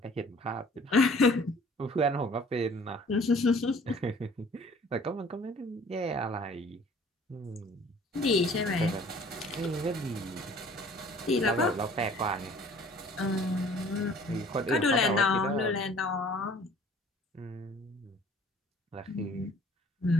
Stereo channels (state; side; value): normal; both; correlation 0.52